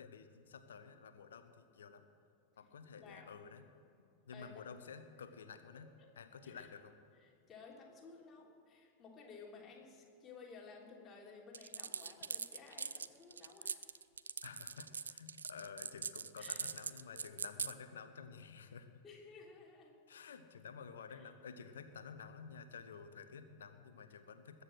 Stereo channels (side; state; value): both; inverted; correlation -0.65